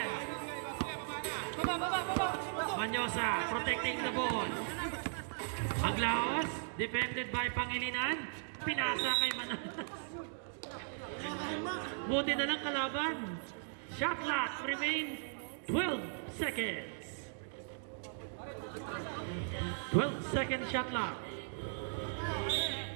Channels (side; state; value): left; silent; digital silence